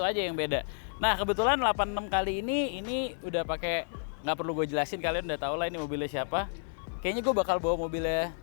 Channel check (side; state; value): right; silent; 57 dB below the other